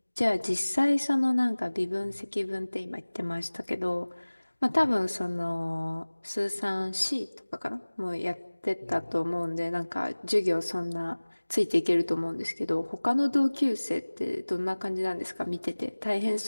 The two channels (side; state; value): both; inverted; correlation -1.00